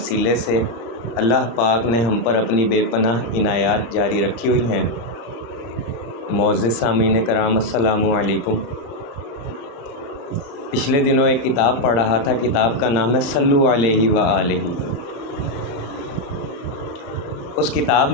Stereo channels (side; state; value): right; late; 35 ms